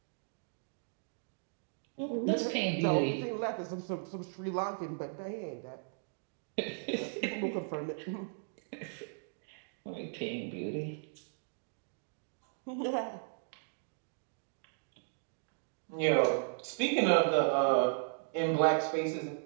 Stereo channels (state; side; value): silent; left; digital silence